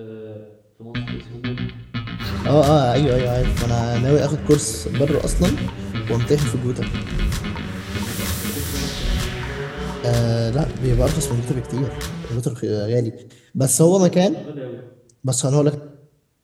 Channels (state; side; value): identical; both; correlation 1.00